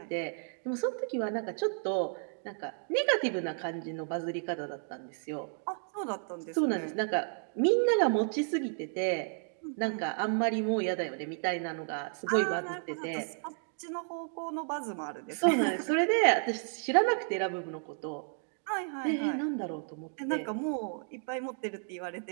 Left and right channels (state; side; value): silent; left; 56 dB below the other